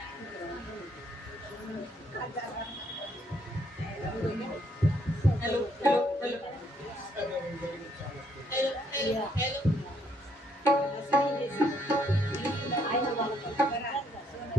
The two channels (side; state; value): both; normal; correlation 0.71